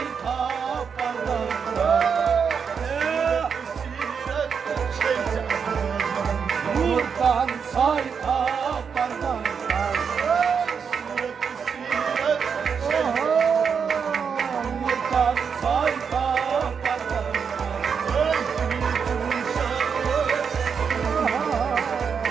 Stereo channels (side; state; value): left; quieter; 6.5 dB